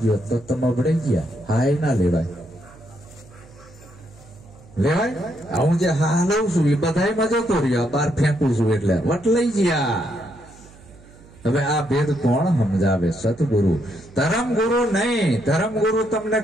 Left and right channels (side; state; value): right; noise; hum, 23 dB below the sound